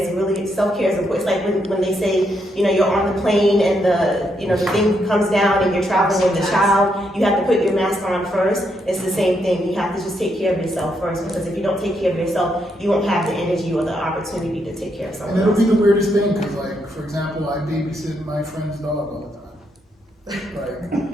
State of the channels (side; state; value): both; normal; correlation 0.78